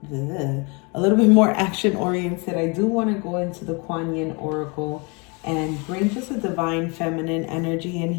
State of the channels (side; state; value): right; quieter; 30.6 dB